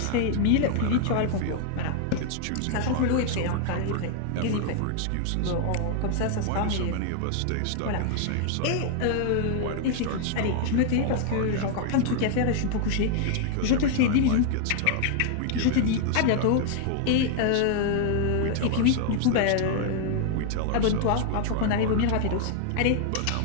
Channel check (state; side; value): different; both; correlation 0.00